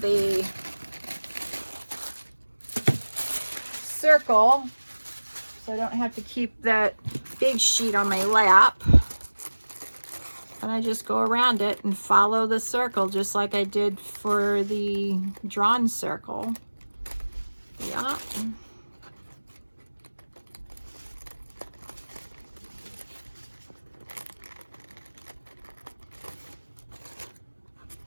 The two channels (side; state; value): both; inverted; correlation -1.00